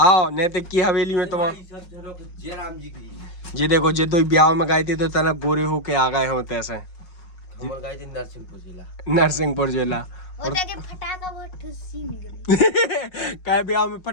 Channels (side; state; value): right; late; 5.4 ms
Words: नैतिक की हवेली में तुम जे देखो जे दो ब्याह में गए थे तो तना गोरे होके आ गए होते ऐसे नरसिंहपुर जिला। और के फटाका बहुत ठुसी निकली काय ब्याह में